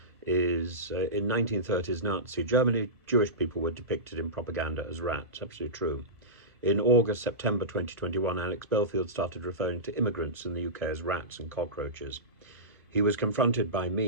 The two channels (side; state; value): both; normal; correlation -0.18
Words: is in 1930s Nazi Germany, Jewish people were depicted in propaganda as rats. Absolutely true. In August, September 2021, Alex Belfield started referring to immigrants in the UK as rats and cockroaches. He was confronted by